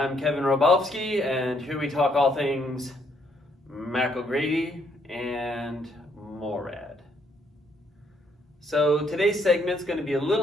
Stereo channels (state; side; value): normal; both; correlation 0.70